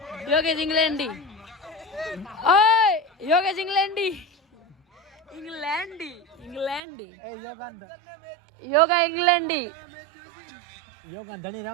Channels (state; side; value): drops out; left; at 6.8 s